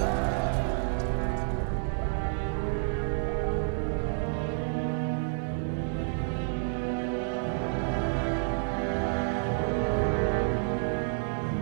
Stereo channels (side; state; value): left; silent; digital silence